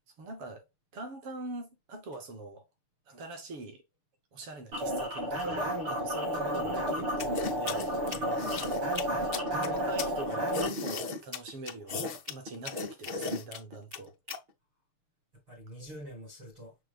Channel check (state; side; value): late; left; 6.7 ms